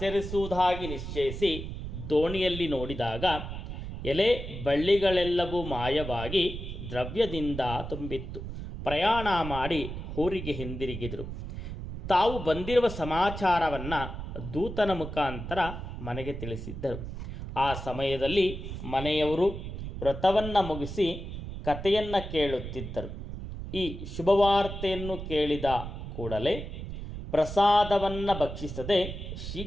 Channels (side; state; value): right; noise; rumble, 8 dB below the sound